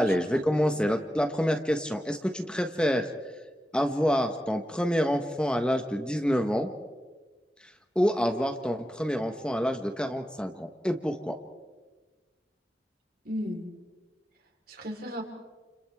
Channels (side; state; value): both; normal; correlation 0.90